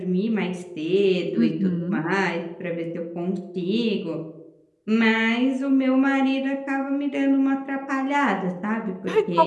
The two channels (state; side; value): identical; both; correlation 1.00